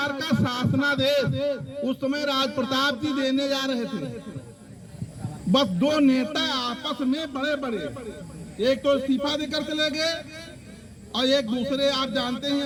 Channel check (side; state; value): both; identical; correlation 1.00